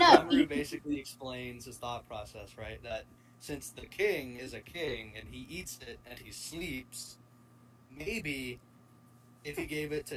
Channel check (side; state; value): both; identical; correlation 1.00